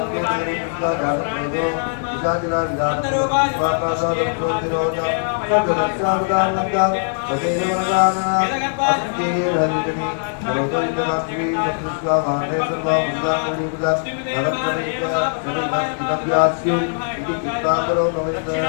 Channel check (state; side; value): silent; right; digital silence